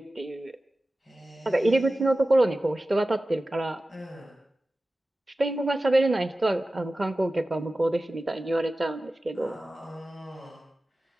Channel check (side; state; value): both; normal; correlation 0.95